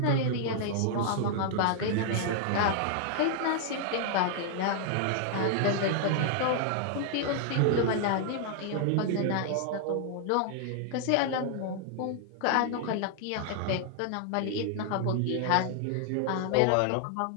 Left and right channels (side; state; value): both; different; correlation 0.00